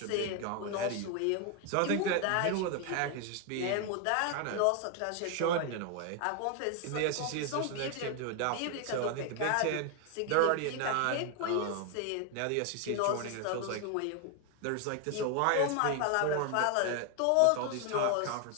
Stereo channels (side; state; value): both; different; correlation 0.01